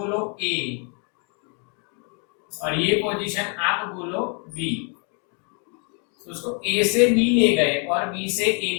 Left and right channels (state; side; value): quieter; right; 39.0 dB